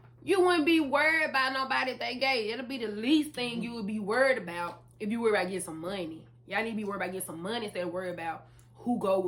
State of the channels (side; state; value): both; identical; correlation 1.00